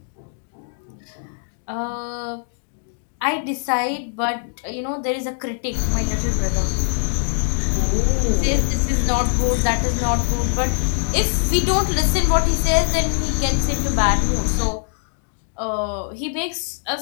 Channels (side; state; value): right; silent; digital silence